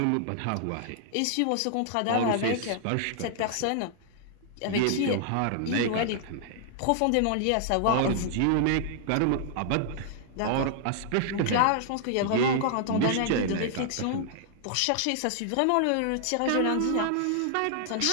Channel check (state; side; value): different; both; correlation -0.01